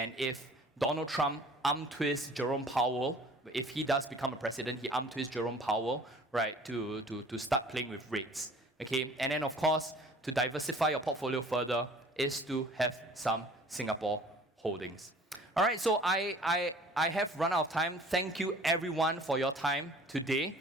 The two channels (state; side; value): normal; both; correlation 0.49